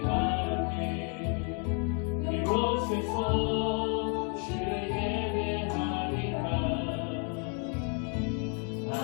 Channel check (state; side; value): quieter; right; 39.6 dB